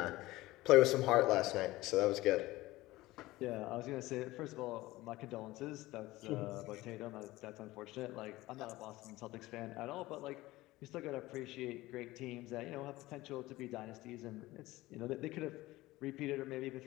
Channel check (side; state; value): right; quieter; 18.4 dB